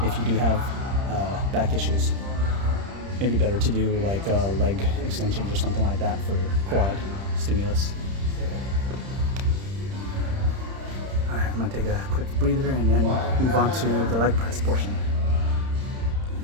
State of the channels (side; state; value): left; late; 30 ms